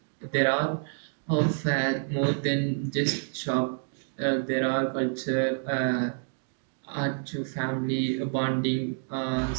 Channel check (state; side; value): silent; left; digital silence